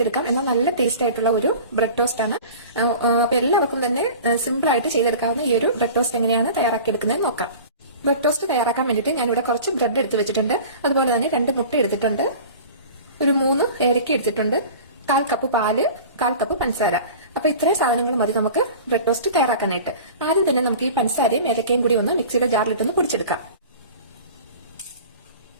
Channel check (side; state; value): both; inverted; correlation -0.39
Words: എന്നാൽ നല്ല ടേസ്റ്റ് ആയിട്ടുള്ള ഒരു ബ്രെഡ് ടോസ്റ്റ് ആണ്. അപ്പൊ എല്ലാവർക്കും തന്നെ സിമ്പിൾ ആയിട്ട് ചെയ്തെടുക്കാവുന്ന ഈ ഒരു ബ്രെഡ് ടോസ്റ്റ് എങ്ങനെയാണ് തയ്യാറാക്കിയെടുക്കുന്നത് നോക്കാം. ബ്രെഡ് ടോസ്റ്റ് തയ്യാറാക്കാൻ വേണ്ടിയിട്ട് ഞാനിവിടെ കുറച്ച് ബ്രെഡ് എടുത്ത് വെച്ചിട്ടുണ്ട്. അതുപോലെ തന്നെ 2 മുട്ട എടുത്തിട്ടുണ്ട്, ഒരു 3 ഏലക്ക എടുത്തിട്ടുണ്ട്, 1/4 കപ്പ് പാല്, 1/4 കപ്പ് പഞ്ചസാര. അപ്പൊ ഇത്രയും സാധനങ്ങൾ മതി നമുക്ക് ബ്രെഡ് ടോസ്റ്റ് തയ്യാറാക്കാനായിട്ട്. ആദ്യം തന്നെ നമുക്ക് ഈ പഞ്ചസാരയും ഏലക്കയും കൂടി ഒന്ന് മിക്സിയുടെ ജാറിലിട്ടൊന്ന് പൊടിച്ചെടുക്കാം.